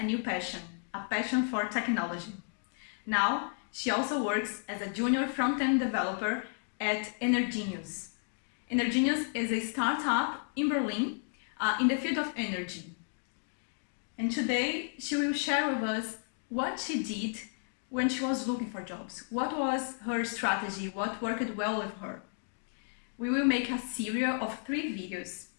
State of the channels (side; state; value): right; silent; 56 dB below the other